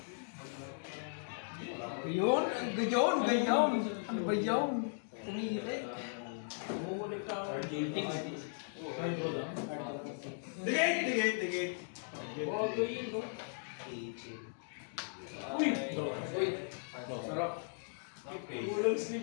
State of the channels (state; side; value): silent; right; digital silence